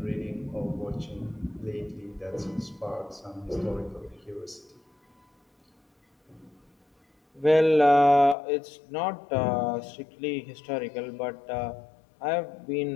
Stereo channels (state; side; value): drops out; right; at 8.3 s